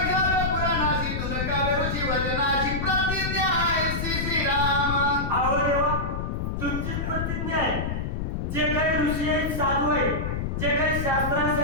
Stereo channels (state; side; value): noise; left; rumble, 2 dB below the sound